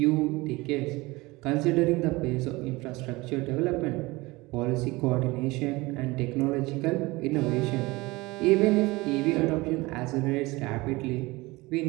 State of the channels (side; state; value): left; quieter; 22.0 dB